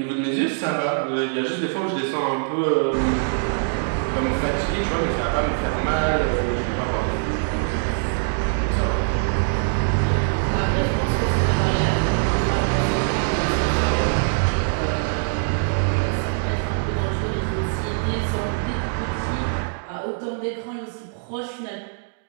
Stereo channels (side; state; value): left; silent; digital silence